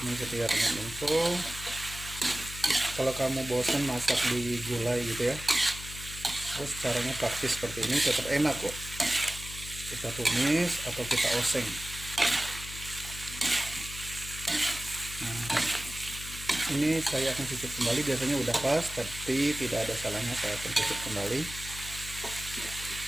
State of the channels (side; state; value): left; noise; hum, 11 dB below the sound